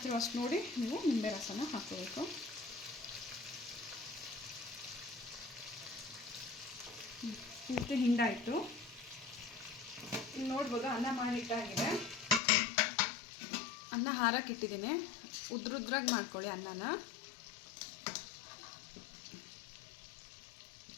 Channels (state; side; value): drops out; right; at 12.4 s